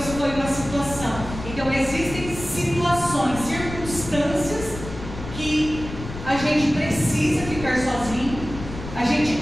foi uma situação. Então existem situações, circunstâncias que a gente precisa ficar sozinho, a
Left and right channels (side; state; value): left; noise; rumble, 10 dB below the sound